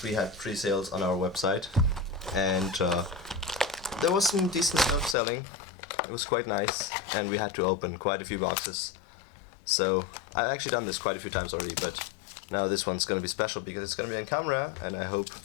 we had pre-sales on our website, and there was some decent stuff selling. It was quite nice, and we had to open quite a few boxes. So I've actually done this quite a few times already, but now this one's going to be special because it's going to be on camera, and I hope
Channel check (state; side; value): drops out; right; at 5.2 s